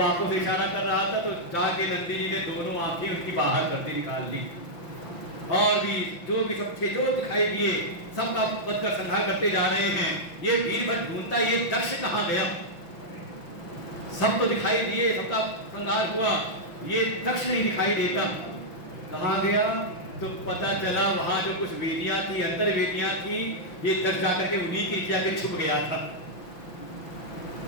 आंखों से इशारा कर रहा था तो जाके नंदी जी ने दोनों आंखें उनकी बाहर करके निकाल ली। और भी जो भी सब थे जो दिखाई दिए सबका वध कर संहार करते जा रहे हैं। ये वीरभद्र ढूंढता ये दक्ष कहाँ गया, सब तो दिखाई दिए, सबका संहार हुआ, ये दक्ष नहीं दिखाई देता, कहाँ गया? तो पता चला वहां जो कुछ वेदियां थी, अंतर वेदियां थी, ये दक्ष जाकर के उन्हीं के जाके छुप गया था।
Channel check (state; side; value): late; right; 5.9 ms